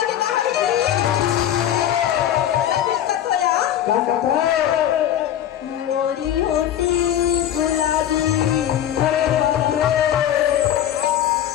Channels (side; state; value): right; quieter; 11.0 dB